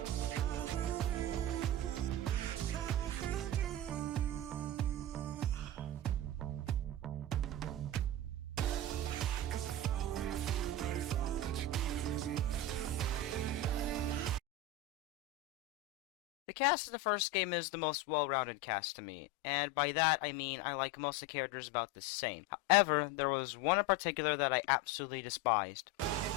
The cast of the first game is the most well-rounded cast to me, and by that I mean I like most of the characters about the same. However, there was one in particular that I absolutely despised.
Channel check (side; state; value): both; normal; correlation 0.20